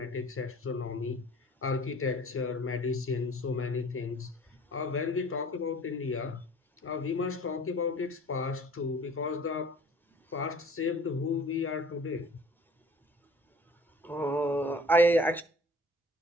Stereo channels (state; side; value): normal; both; correlation 0.48